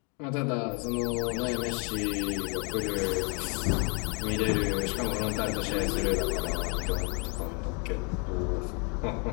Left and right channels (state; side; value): quieter; right; 35.3 dB